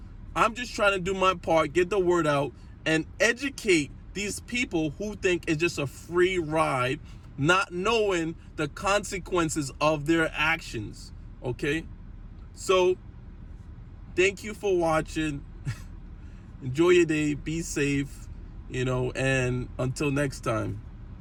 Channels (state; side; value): identical; both; correlation 1.00